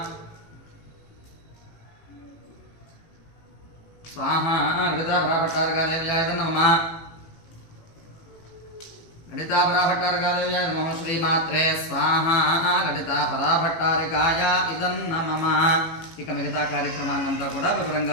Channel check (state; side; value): late; right; 18 ms